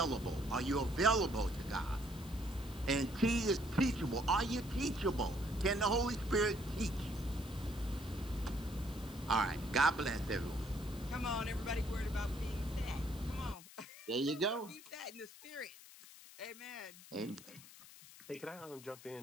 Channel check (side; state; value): left; noise; hiss, 18 dB below the sound